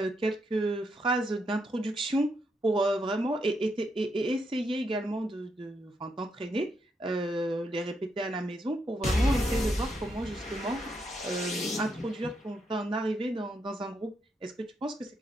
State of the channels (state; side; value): normal; both; correlation 0.79